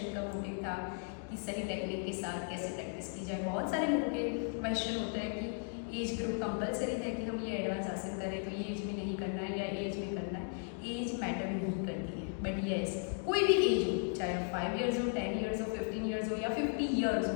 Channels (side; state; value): right; silent; 54 dB below the other